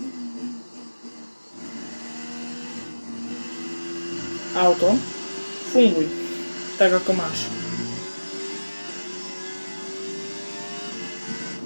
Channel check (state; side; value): inverted; both; correlation -1.00